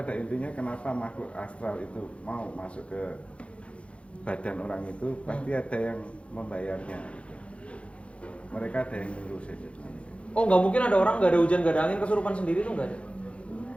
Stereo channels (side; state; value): right; late; 0.061 ms